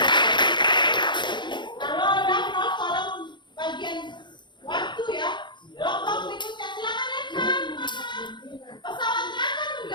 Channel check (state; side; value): late; right; 0.22 ms